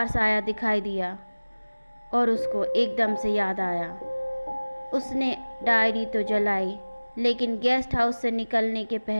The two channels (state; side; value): inverted; both; correlation -1.00